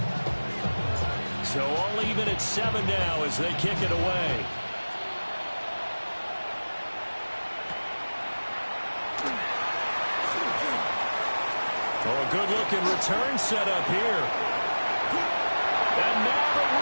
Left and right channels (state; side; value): inverted; both; correlation -1.00